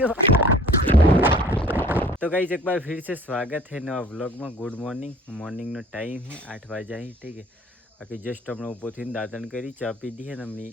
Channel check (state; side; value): normal; both; correlation 0.50